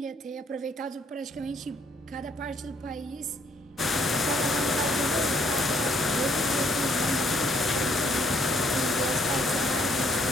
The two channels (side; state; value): both; normal; correlation 0.67